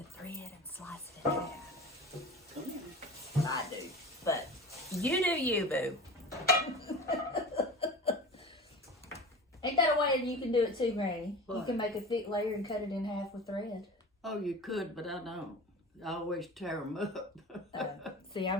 thread and slice it in half. I do. But you do you, boo. Ain't that a way that you can do it too, Granny? You What? can make a thick layer and cut it in half with thread. Oh, you could, but I don't. I always tear them up. See,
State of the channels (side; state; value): both; normal; correlation 0.34